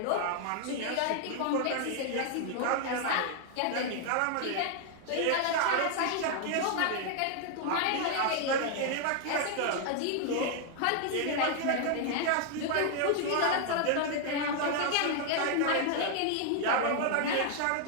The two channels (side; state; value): both; different; correlation 0.00